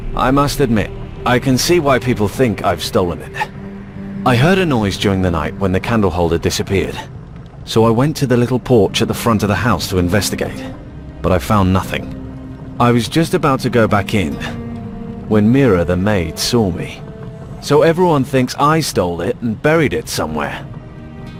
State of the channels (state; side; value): identical; both; correlation 1.00